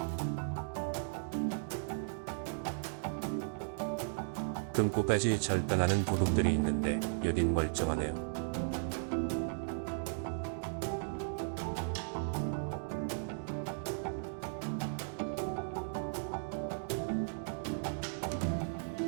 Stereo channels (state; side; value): silent; left; digital silence